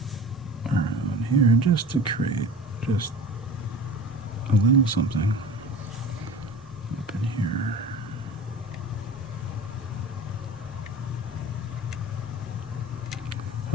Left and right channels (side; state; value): both; normal; correlation 0.37